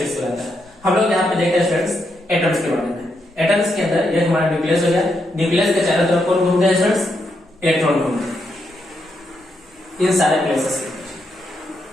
कहलाता है। हम लोग यहाँ पे देखते हैं स्टूडेंट्स एटम्स के बारे में। एटम्स के अंदर ये हमारा न्यूक्लियस हो गया। न्यूक्लियस के चारों तरफ कौन घूमते हैं स्टूडेंट्स? इलेक्ट्रॉन घूमते हैं इन सारे प्लेसेस के।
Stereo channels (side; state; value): both; normal; correlation 0.81